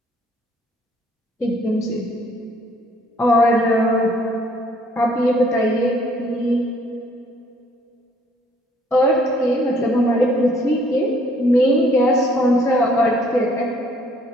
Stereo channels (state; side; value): normal; both; correlation 0.62